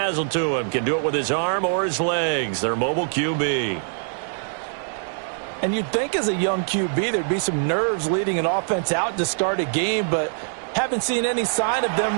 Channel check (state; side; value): silent; left; digital silence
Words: to him. Can do it with his arm or his legs. Their mobile QB. And you'd think as a young QB there'd be some nerves leading an offense out to start a game, but haven't seen any sign of them